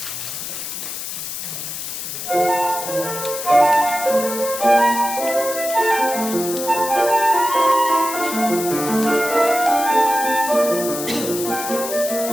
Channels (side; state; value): left; noise; hiss, 6 dB below the sound